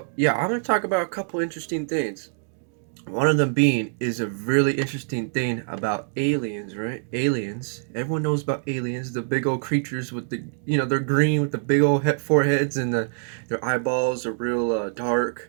yeah, I'm gonna talk about a couple interesting things. One of them being is a really interesting thing about aliens, right? Aliens. Everyone knows about aliens, the big old creatures with the, they're green with the big old foreheads and their eyeballs are real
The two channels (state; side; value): silent; left; digital silence